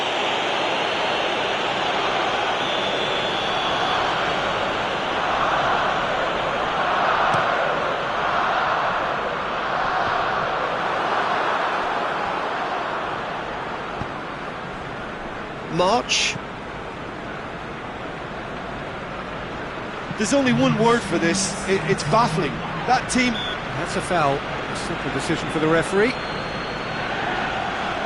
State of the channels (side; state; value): both; identical; correlation 1.00